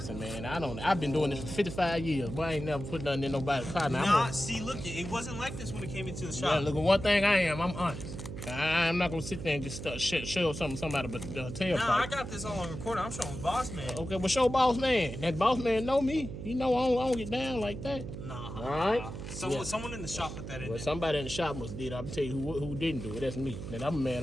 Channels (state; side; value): noise; right; hum, 8 dB below the sound